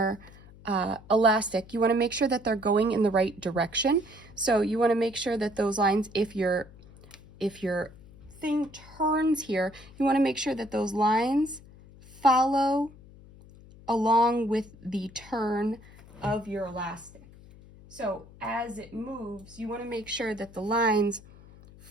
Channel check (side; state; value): left; noise; hum, 21 dB below the sound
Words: elastic, you want to make sure that they're going in the right direction. So you want to make sure that those lines, if your thing turns here, you want to make sure that those lines follow along with the turn of your elastic. So as it moves, you want to make sure that the lines